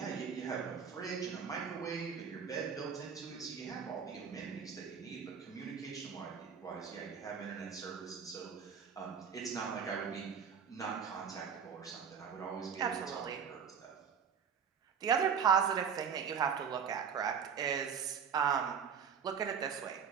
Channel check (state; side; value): quieter; left; 7.1 dB